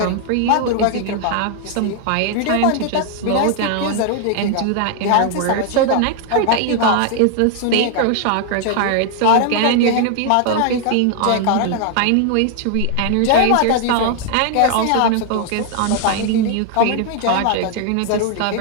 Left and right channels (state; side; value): different; both; correlation 0.00